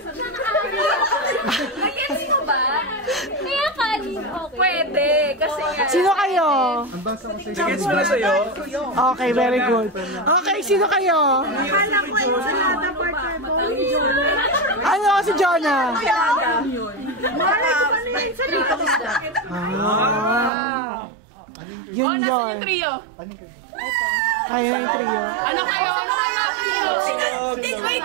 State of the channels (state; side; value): drops out; left; at 20.5 s